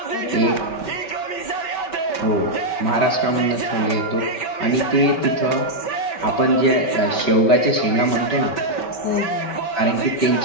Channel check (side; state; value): right; late; 5.2 ms